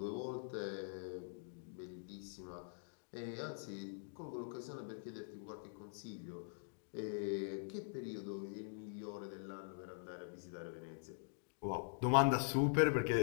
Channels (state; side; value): silent; right; digital silence